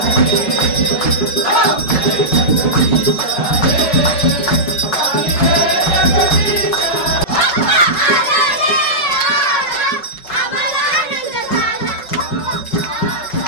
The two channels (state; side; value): late; right; 5.3 ms